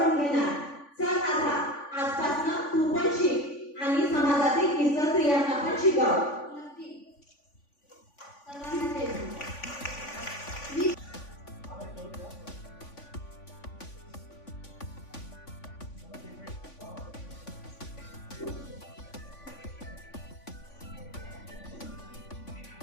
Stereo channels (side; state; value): right; late; 3.5 ms